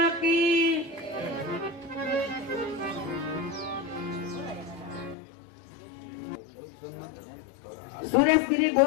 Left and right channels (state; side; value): drops out; right; at 5.2 s